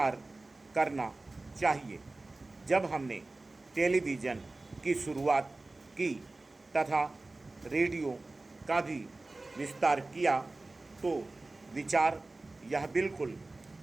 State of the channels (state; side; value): quieter; left; 3.1 dB